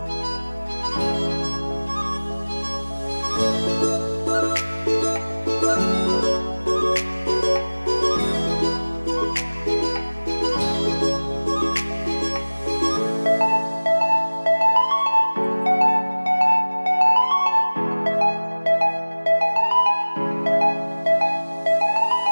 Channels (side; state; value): both; inverted; correlation -1.00